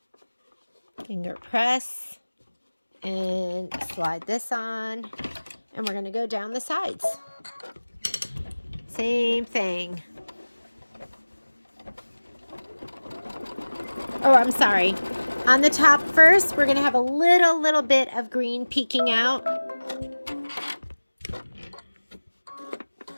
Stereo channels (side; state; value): both; inverted; correlation -1.00